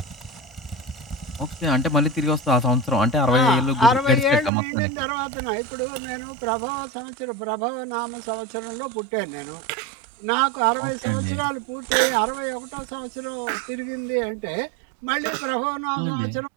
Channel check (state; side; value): drops out; left; at 4.5 s